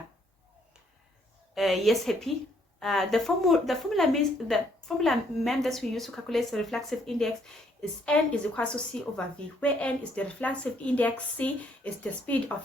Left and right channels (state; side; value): normal; both; correlation 0.68